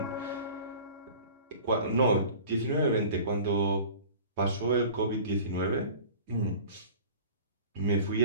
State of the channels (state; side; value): inverted; both; correlation -0.42